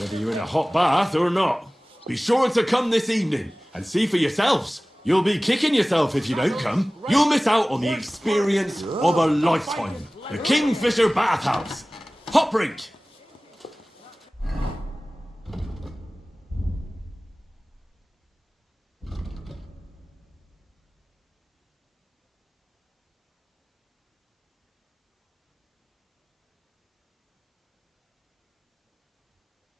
you're in a hot bath or not. Be sure to come this evening and see for yourselves. You'll be kicking yourself if you don't come. You'll miss out on the experience of a lifetime. The Kingfisher Bathhouse. Hot Brink.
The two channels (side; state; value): both; normal; correlation 0.98